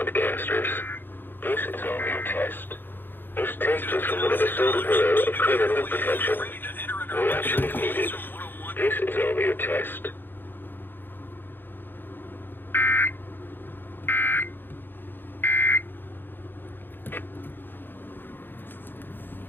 This is only a test. This test is from one of the Solar Bureau of Criminal Protection. No action is needed. This is only a test.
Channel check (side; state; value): right; late; 0.096 ms